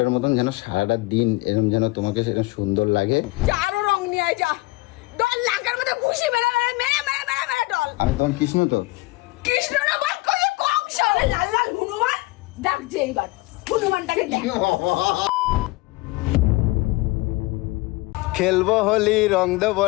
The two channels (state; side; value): quieter; right; 22.1 dB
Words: মতন যেন সারাটা দিন এরকম যেন তোমাকে সেরকম সুন্দর লাগে। আরো রং নিয়ে আয় যা, ডল লাগার মধ্যে ঘুষি মেরে মেরে মেরে মেরে মেরে ডল। আমি তোমার কৃষ্ণ তো, কৃষ্ণ না বল কই কংস, লাল লাল হনুমান ডাকছে এইবার, হনুমানটাকে দেখ। খেলবো হোলি রং দেবো